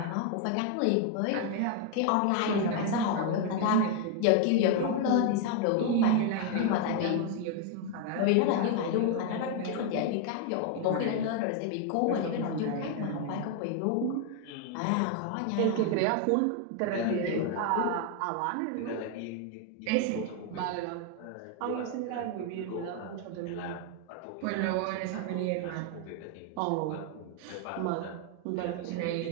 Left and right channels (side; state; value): both; different; correlation 0.01